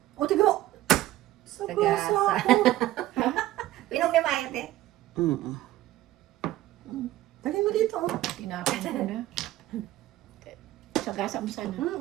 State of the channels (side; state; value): left; quieter; 15.1 dB